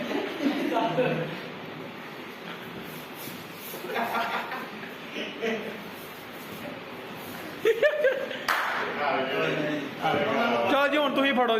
ਚਲੋ ਜੀ ਹੁਣ ਤੁਸੀਂ ਫੜੋ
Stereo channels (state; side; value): identical; both; correlation 1.00